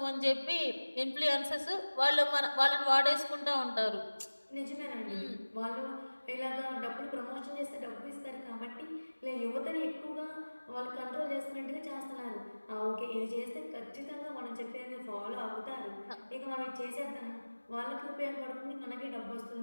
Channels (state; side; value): inverted; both; correlation -1.00